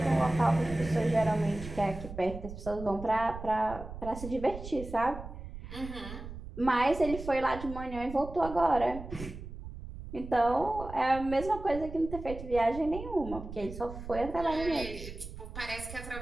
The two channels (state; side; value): noise; right; rumble, 11 dB below the sound